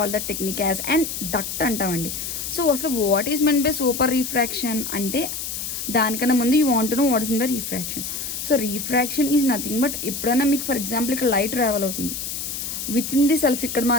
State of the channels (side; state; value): left; noise; hiss, 5 dB below the sound